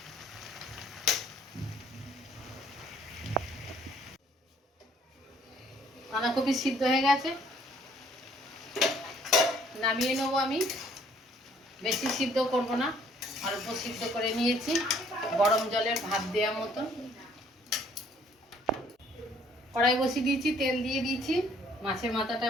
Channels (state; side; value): normal; both; correlation 0.61